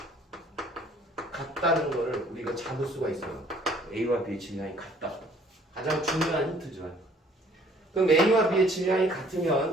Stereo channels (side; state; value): both; normal; correlation 0.58